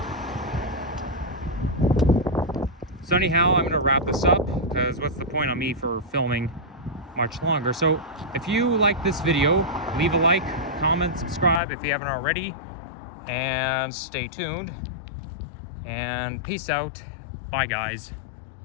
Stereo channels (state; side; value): drops out; right; at 11.6 s